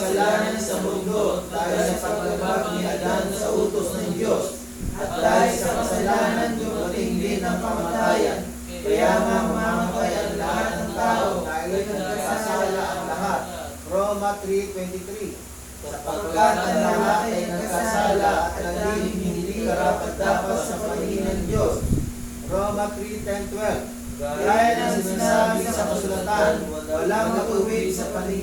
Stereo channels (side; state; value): both; identical; correlation 1.00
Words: sa mundo dahil sa paglabag ni Adan sa utos ng Diyos. At dahil sa kasalanan, dumating din ang kamatayan. Kaya nga mamamatay ang lahat ng tao dahil nagkasala ang lahat. Roma 3:23. Sapagkat ang lahat ay nagkasala at naging hindi karapat-dapat sa paningin ng Diyos. Roma 3:10-12. Gaya ng sinasabi sa kasulatan, walang matuwid sa